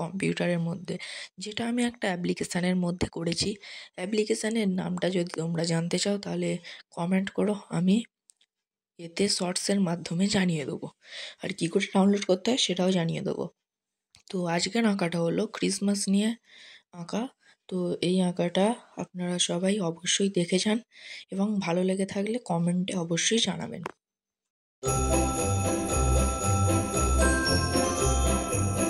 মধ্যে, যেটা আমি একটা অ্যাপ্লিকেশানের মধ্যে করেছি। অ্যাপ্লিকেশানের নামটা যদি তোমরা জানতে চাও তাহলে কমেন্ট করো, আমি এতে শর্টসের মাধ্যমে জানিয়ে দেবো। আর কী করে ডাউনলোড করতে হয় সেটাও জানিয়ে দেবো। তো আজকের আঁকাটা হলো ক্রিসমাস নিয়ে আঁকা। তো এই আঁকাটা আপনারা সবাই অবশ্যই দেখে যান এবং ভালো লেগে থাকলে কমেন্টে অবশ্যই জানাবেন।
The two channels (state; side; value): identical; both; correlation 1.00